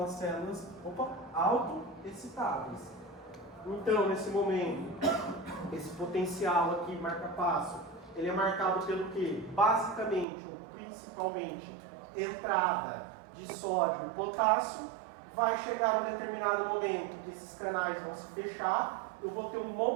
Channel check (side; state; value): left; drops out; at 10.2 s